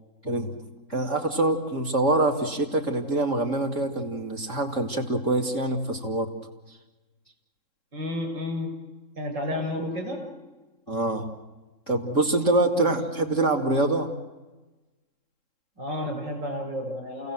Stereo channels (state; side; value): late; right; 3.7 ms